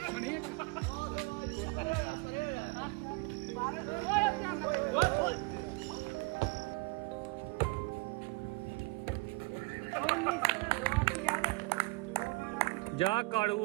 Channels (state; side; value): quieter; left; 25.9 dB